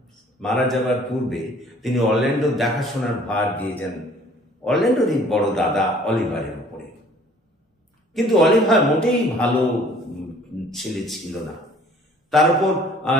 মারা যাবার পূর্বে তিনি অরল্যান্ডোর দেখাশোনার ভার দিয়ে যান অরল্যান্ডোরই বড় দাদা অলিভারের উপরে। কিন্তু অলিভার মোটেই ভালো ছেলে ছিল না। তার উপর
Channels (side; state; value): both; normal; correlation 0.54